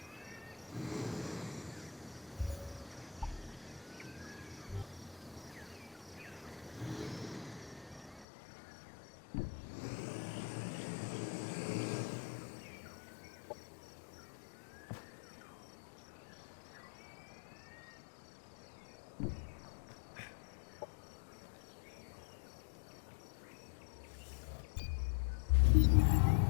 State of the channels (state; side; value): drops out; right; at 8.2 s